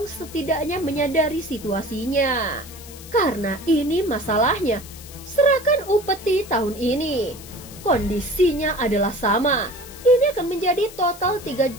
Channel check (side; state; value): left; noise; hiss, 17 dB below the sound